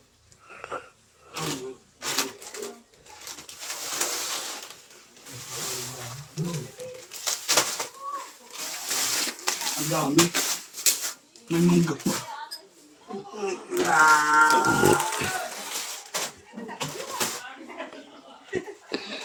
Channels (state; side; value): identical; both; correlation 1.00